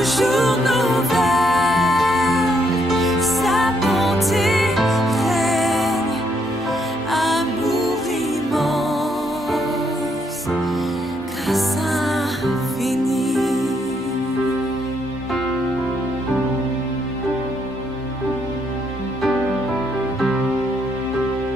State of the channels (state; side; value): normal; both; correlation 0.73